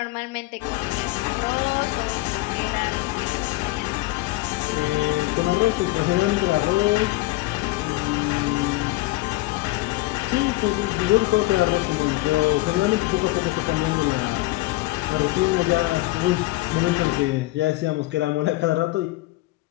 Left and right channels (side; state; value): right; quieter; 19.4 dB